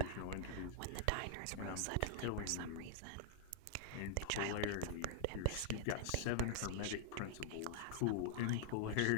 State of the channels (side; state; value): both; different; correlation -0.01